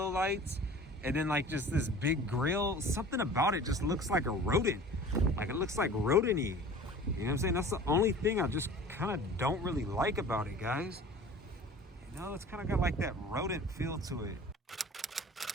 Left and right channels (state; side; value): normal; both; correlation 0.42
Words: lights and then like just this big grille, something about it just looks like a rodent. Like it looks like rodent-y. You know what I'm saying? That's the only thing I just kind of don't really like about it, guys. You know, it's kind of got like that rodent feel to it.